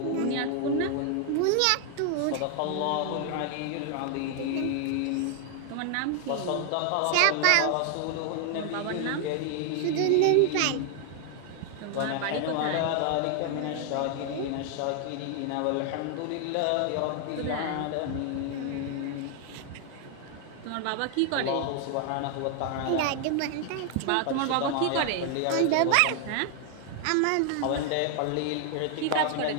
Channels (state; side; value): different; both; correlation 0.00